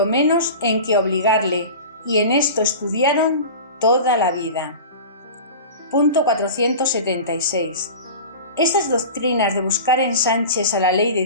menos en que obligarle, y en esto estudiaron toda la vida. Punto 476. Esas doctrinas de buscar ensanches a la ley de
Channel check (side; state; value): both; inverted; correlation -0.34